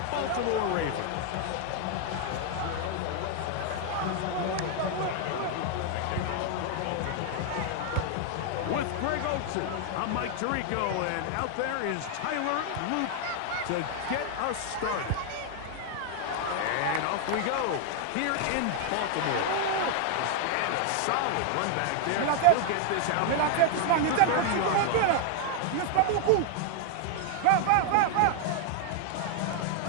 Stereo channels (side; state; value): both; different; correlation 0.00